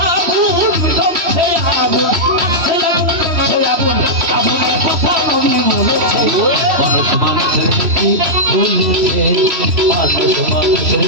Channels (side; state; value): left; late; 3.1 ms